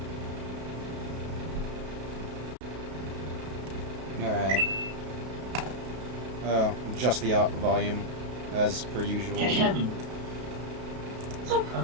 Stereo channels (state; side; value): late; left; 32 ms